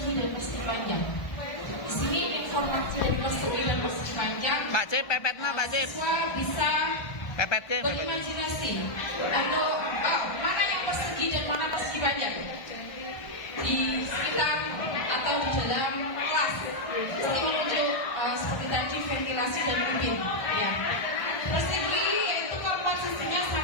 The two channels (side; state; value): right; late; 1.3 ms